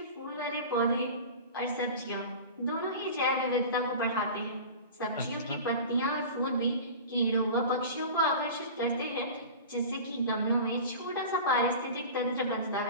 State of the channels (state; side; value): inverted; both; correlation -0.35